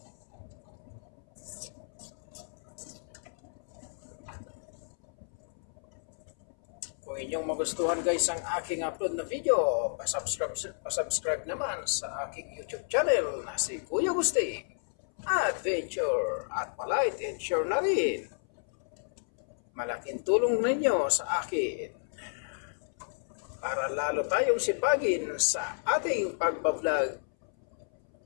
Kung inyong magustuhan guys ang aking upload na video, pasubscribe naman sa aking YouTube channel na si Kuya Gusti Adventure at palike and share na rin. Malaking tulong ninyo sa akin para lalo tayong sipagin sa ating pagbablog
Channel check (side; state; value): right; silent; 57 dB below the other